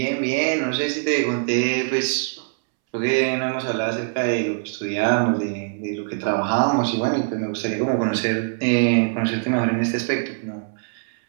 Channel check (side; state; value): left; silent; 64 dB below the other